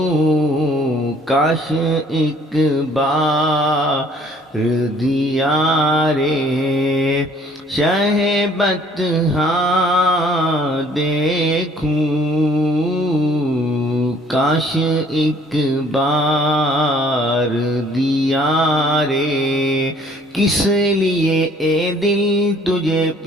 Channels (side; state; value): both; normal; correlation 0.58